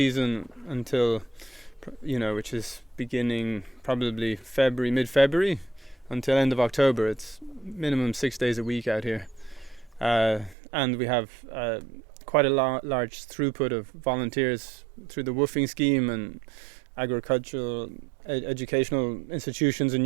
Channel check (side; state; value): left; drops out; at 10.6 s